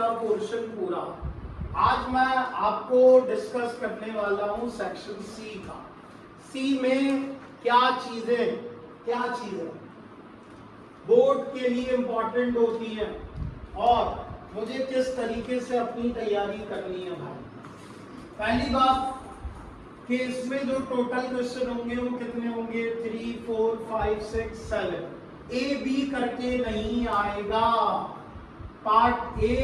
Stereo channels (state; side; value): identical; both; correlation 1.00